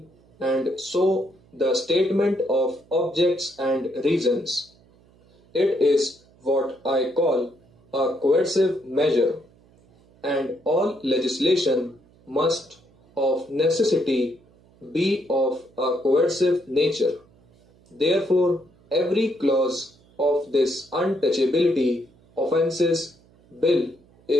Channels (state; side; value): noise; right; hum, 30 dB below the sound